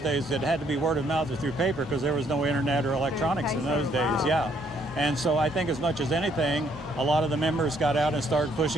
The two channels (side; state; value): both; normal; correlation 0.68